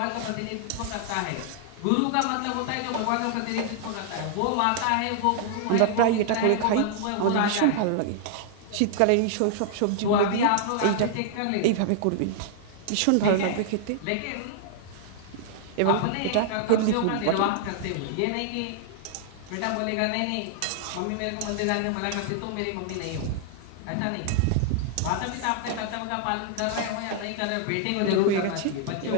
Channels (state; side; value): different; both; correlation -0.01